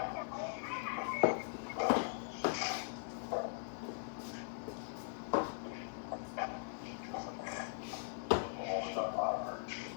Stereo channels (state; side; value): silent; right; digital silence